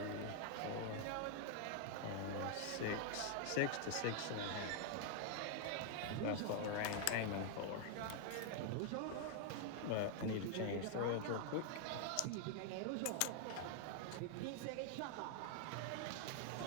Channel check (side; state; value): both; different; correlation 0.00